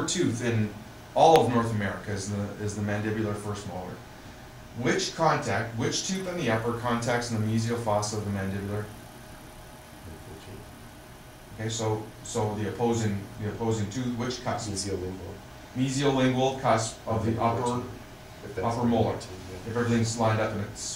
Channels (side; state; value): both; identical; correlation 1.00